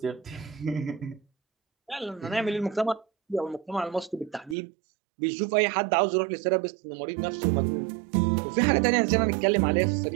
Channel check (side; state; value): left; drops out; at 4.5 s